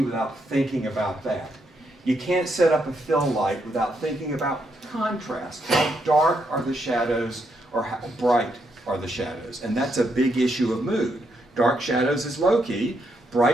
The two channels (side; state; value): both; normal; correlation 0.78